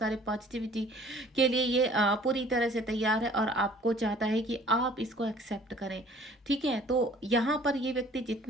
पॉजिटिविटी के लिए ये पूरी तरह से तैयार है और आपको चाहता है कि आप इसको एक्सेप्ट करें। ठीक है, तो यहाँ पर ये व्यक्ति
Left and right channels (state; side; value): normal; both; correlation 0.53